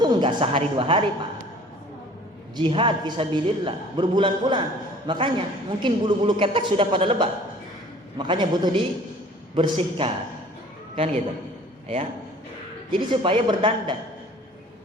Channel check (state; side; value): normal; both; correlation 0.50